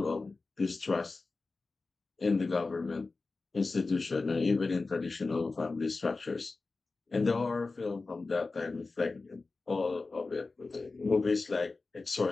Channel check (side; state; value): right; quieter; 3.8 dB